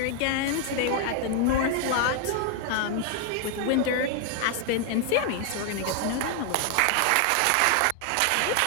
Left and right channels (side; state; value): both; different; correlation 0.00